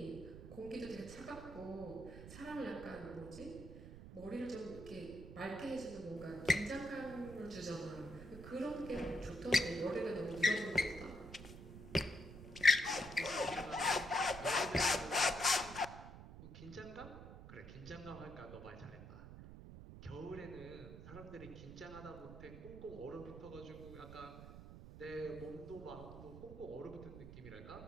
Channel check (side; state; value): right; noise; rumble, 13 dB below the sound